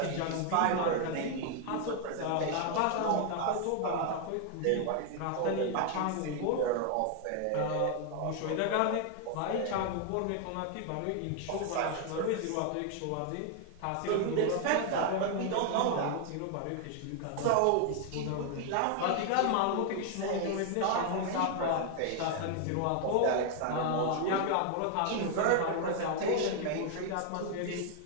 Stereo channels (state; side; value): different; both; correlation 0.00